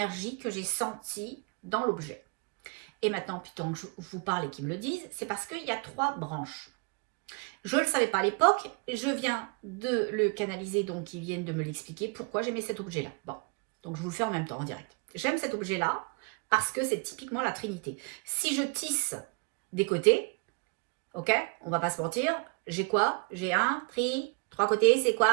que j'ai sentie dans l'objet. Et maintenant, putain, que je vous parle et qu'ils me le disent, c'est parce qu'il y a 3 branches. Je ne le savais pas à l'époque, je viens de le canaliser, donc ils viennent de me l'expliquer pourquoi j'aimais cet objet-là. Bon, donc je vous le fais en même temps, en direct. J'aime cet objet-là parce que c'est typiquement la Trinité. Si je tisse des côtés, ok, on va pas se mentir, j'ai quoi? J'ai un 3 côtés, c'est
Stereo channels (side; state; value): left; quieter; 31.8 dB